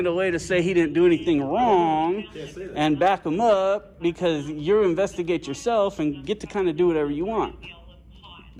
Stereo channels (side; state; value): both; identical; correlation 1.00